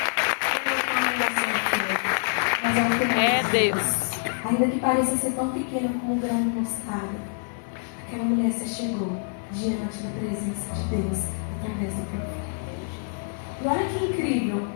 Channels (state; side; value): silent; right; digital silence